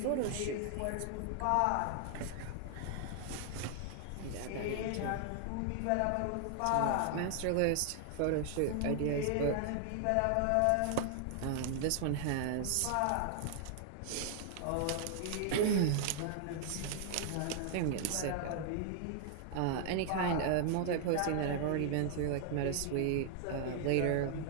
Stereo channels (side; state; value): both; different; correlation 0.00